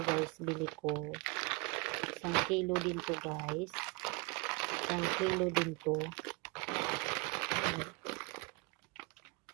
guys, bili ko. 1 kilo din to guys. 1 kilo din to.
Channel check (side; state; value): left; quieter; 28.1 dB